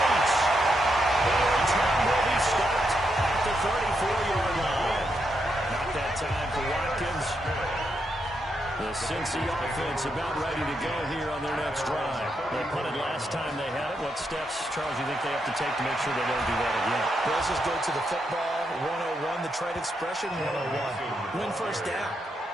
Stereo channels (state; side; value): normal; both; correlation 0.81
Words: The return will be stopped at the 34-yard line. Not that time for Watkins. The Cincy offense about ready to go here on their next drive. They punted last time they had it. What steps, Charles, you think they have to take to make sure they don't do that again? Let's just go to the football 101, the trade expression 101. Win first down.